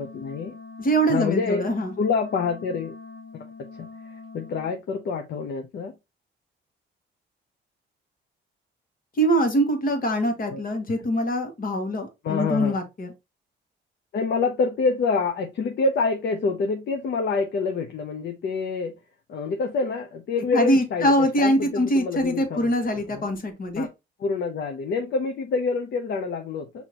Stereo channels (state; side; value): normal; both; correlation 0.32